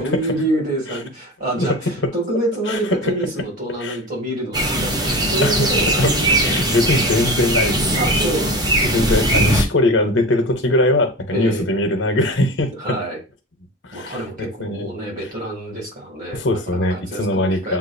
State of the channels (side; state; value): both; normal; correlation 0.31